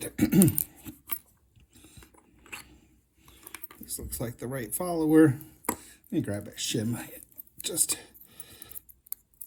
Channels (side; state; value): both; identical; correlation 1.00